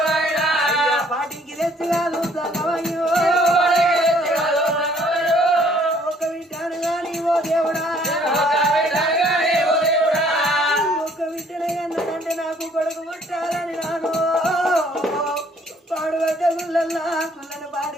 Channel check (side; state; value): both; normal; correlation 0.61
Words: పాటికి తెచ్చి కాదు తగవయ్యో ఒక వింటాను గాని ఓ దేవుడా నాకు కొడుకు పుట్టాలని నాను పాడుబడ్డ గుళ్ళల్లా గుళ్ళను